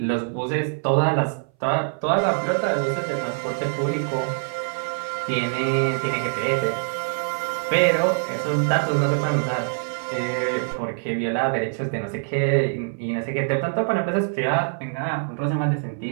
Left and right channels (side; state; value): left; silent; 60 dB below the other